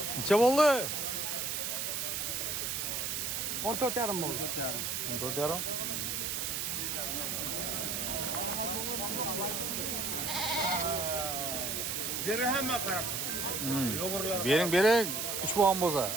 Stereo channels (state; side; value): noise; right; hiss, 1 dB below the sound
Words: Necha bo'ldi? 14 yarim bo'ldi. 14,5. Deri hemen karab. Bering, 3 bo'lgan